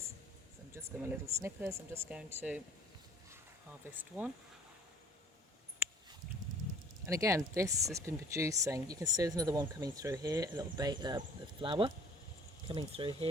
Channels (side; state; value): both; normal; correlation 0.51